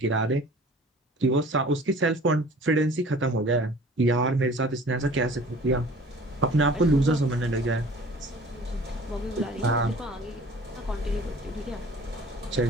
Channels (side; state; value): both; normal; correlation 0.47